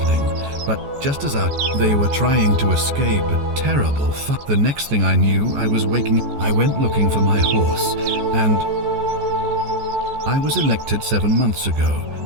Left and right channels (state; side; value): late; left; 14 ms